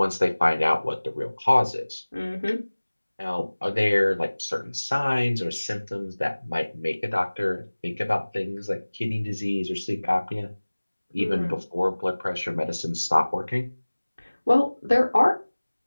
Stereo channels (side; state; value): both; inverted; correlation -1.00